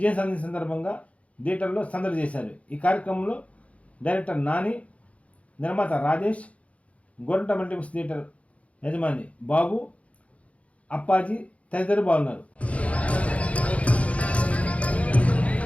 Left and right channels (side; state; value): right; late; 0.065 ms